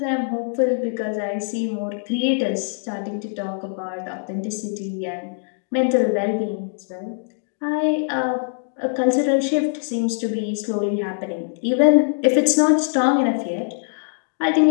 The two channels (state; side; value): silent; right; digital silence